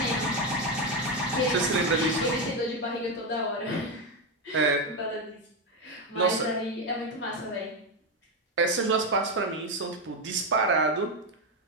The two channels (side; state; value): both; normal; correlation 0.09